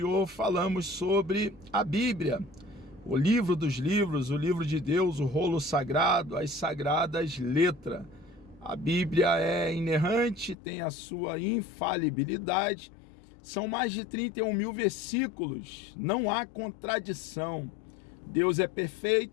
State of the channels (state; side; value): drops out; right; at 10.6 s